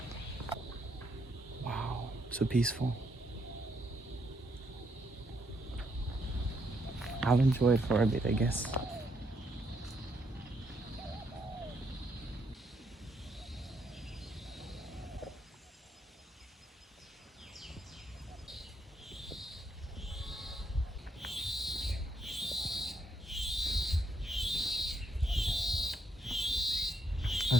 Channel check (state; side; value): normal; both; correlation 0.76